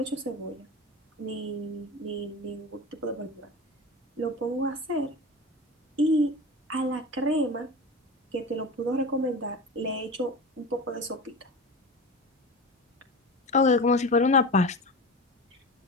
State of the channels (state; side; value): normal; both; correlation 0.29